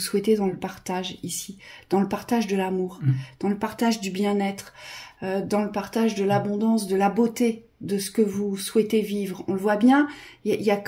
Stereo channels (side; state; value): both; identical; correlation 1.00